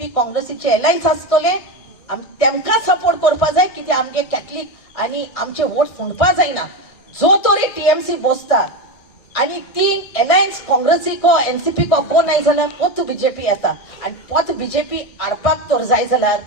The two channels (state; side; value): late; right; 1.6 ms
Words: काँग्रेसीचे एलायन्स आसतले तेमकां सपोर्ट करपा जाय. कित्याक आमगे कॅथलीक आनी आमचे वोट फुंडपा जायना. जो तरी TMC बसता आनी ती एलायन्स काँग्रेसीको NCP को कोण नाय जाल्यार पोत BJP येता. आनी पोत BJP हाडपाक तर जाय जाल्यार